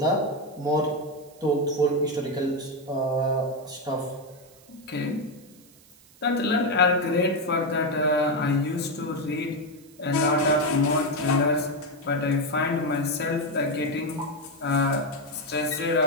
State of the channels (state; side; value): noise; right; hiss, 26 dB below the sound